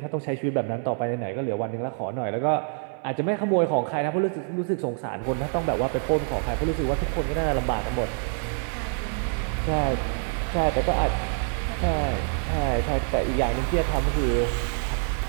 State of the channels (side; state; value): left; silent; 61 dB below the other